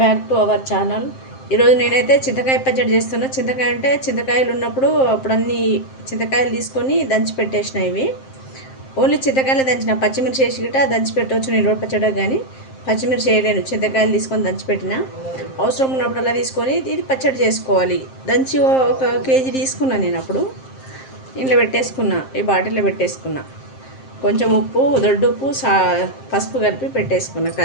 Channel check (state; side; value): late; right; 7.6 ms